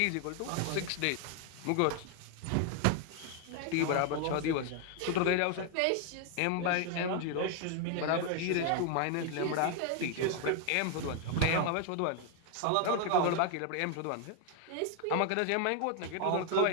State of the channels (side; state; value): both; different; correlation 0.00